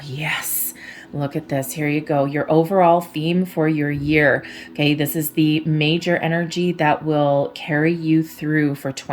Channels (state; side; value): identical; both; correlation 1.00